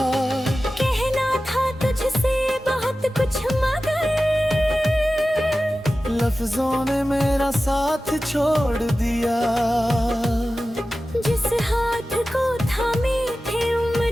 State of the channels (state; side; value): normal; both; correlation 0.95